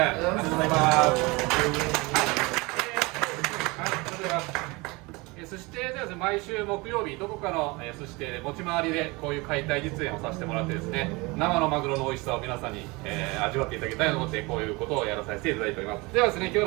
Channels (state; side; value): quieter; left; 25.1 dB